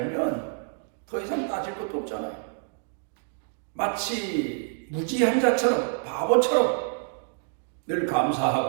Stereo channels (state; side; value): silent; left; 58 dB below the other